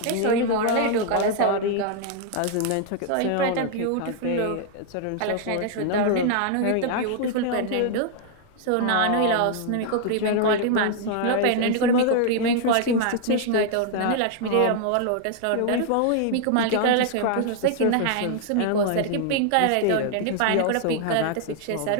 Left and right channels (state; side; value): different; both; correlation 0.00